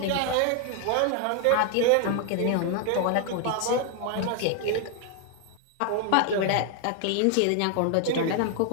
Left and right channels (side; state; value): both; different; correlation 0.00